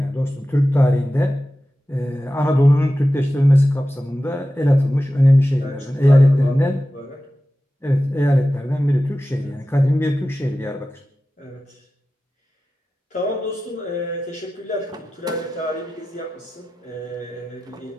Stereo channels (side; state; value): both; normal; correlation 0.94